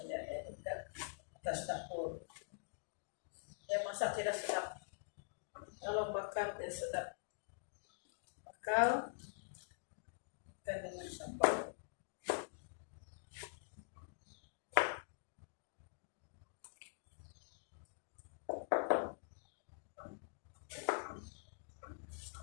ya, dekat atas dapur. Saya masak tidak sedap. Kalau bakar dia sedap. Bakar ikan dengan sambal.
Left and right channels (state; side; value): silent; right; digital silence